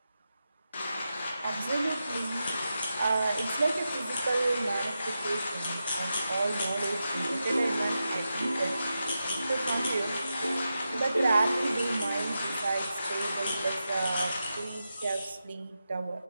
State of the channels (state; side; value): inverted; both; correlation -0.89